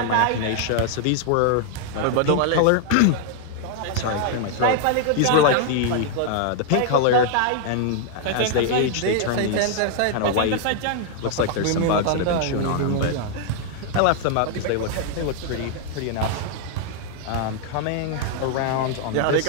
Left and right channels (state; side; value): different; both; correlation 0.00